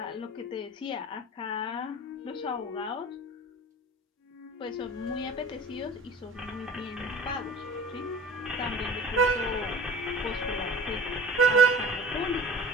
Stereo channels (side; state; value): both; normal; correlation 0.42